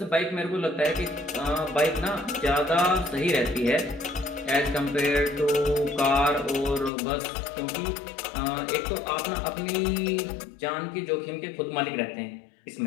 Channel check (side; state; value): right; drops out; at 6.9 s